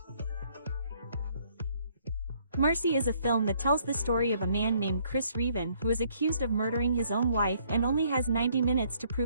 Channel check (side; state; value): both; inverted; correlation -0.65